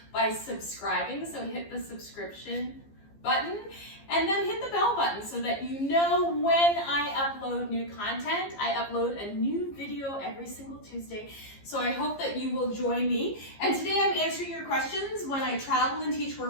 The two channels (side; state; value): right; late; 15 ms